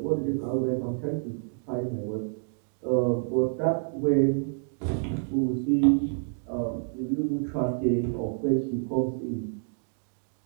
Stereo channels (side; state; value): left; silent; digital silence